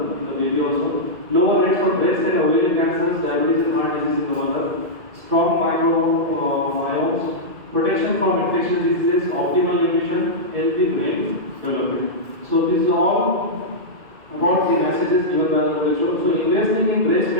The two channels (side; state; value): left; late; 2.2 ms